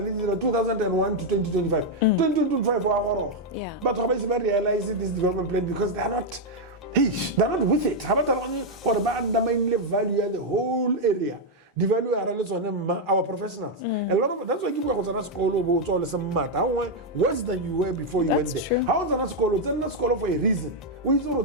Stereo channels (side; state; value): both; normal; correlation 0.00